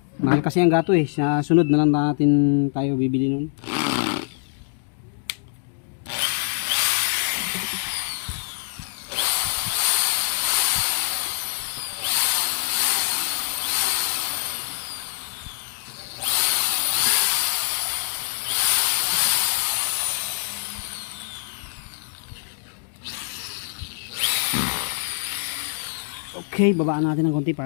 Mahal kasi ang gato eh. Sa sunod na lang natin tayo bibili nun. Okay, babaan natin ng konti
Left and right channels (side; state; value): right; silent; digital silence